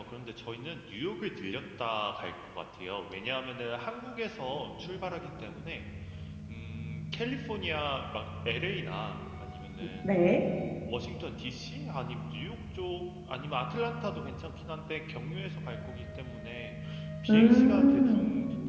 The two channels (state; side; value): identical; both; correlation 1.00